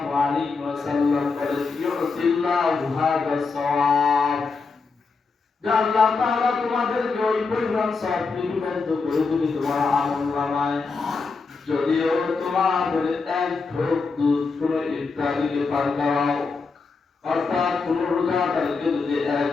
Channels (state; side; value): quieter; right; 4.5 dB